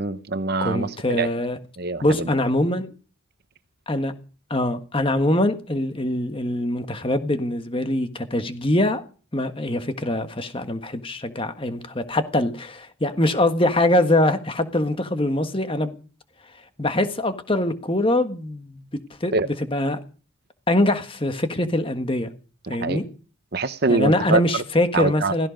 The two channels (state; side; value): normal; both; correlation 0.50